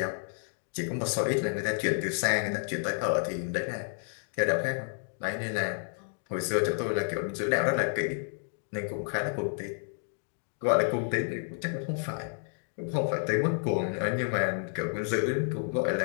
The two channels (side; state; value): right; silent; 57 dB below the other